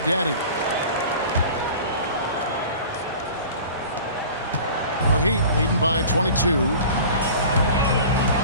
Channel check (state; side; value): inverted; both; correlation -0.41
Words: Daddy. The Heat leading by 22.